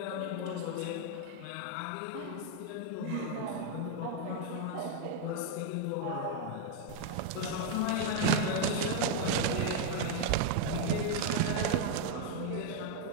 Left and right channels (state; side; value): different; both; correlation 0.00